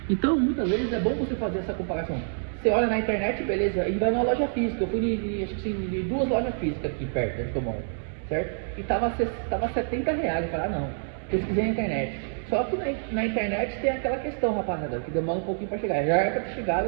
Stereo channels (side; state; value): left; silent; digital silence